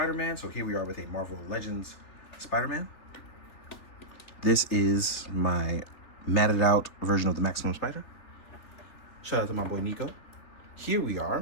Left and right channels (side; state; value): right; late; 3.4 ms